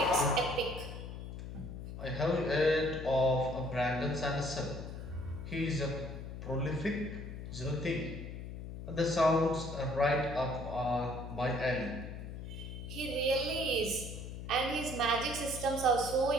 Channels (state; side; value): noise; left; hum, 9 dB below the sound